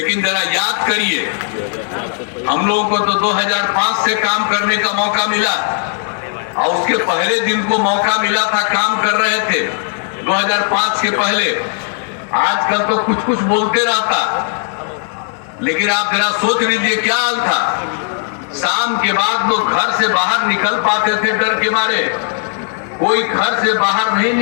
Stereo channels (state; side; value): silent; right; digital silence